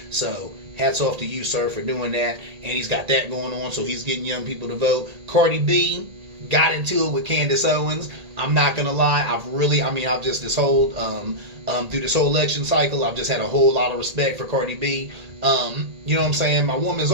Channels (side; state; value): left; late; 1.8 ms